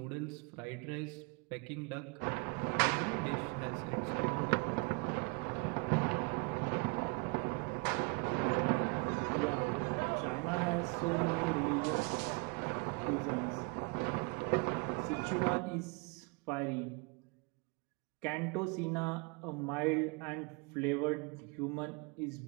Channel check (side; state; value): left; quieter; 31.2 dB